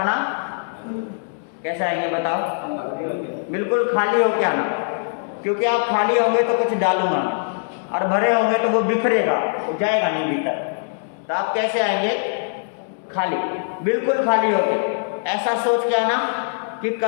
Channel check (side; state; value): right; silent; digital silence